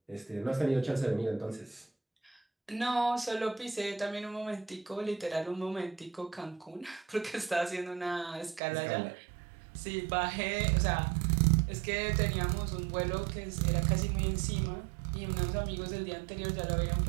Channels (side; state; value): left; drops out; at 8.6 s